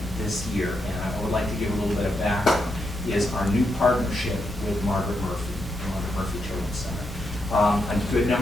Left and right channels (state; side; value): normal; both; correlation 0.83